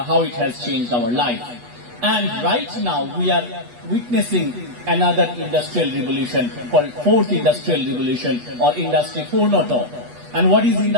it has changed our life. And right now we are witnessing another industrial revolution called 4th industrial revolution or Industry 4.0. And what is in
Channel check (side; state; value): left; late; 8.2 ms